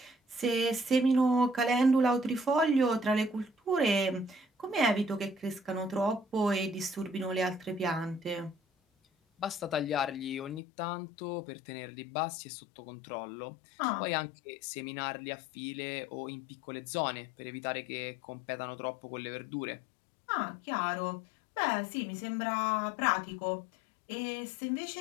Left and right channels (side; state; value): right; drops out; at 10.6 s